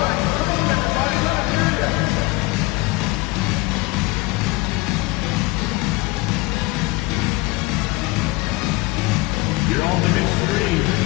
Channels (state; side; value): quieter; right; 22.1 dB